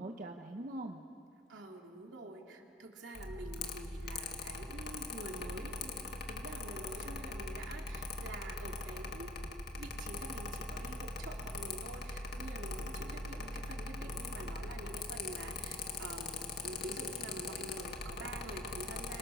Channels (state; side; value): normal; both; correlation 0.50